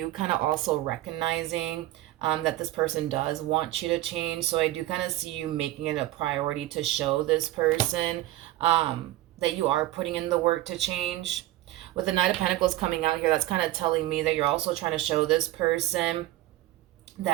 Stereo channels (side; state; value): left; quieter; 15.7 dB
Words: kind of also recognizing that this person does want you to change. So I do kind of see you making it a priority to show this person that you are putting in the work to change. With the Knight of Pentacles coming out here, that's kind of telling me that you're also trying to show this person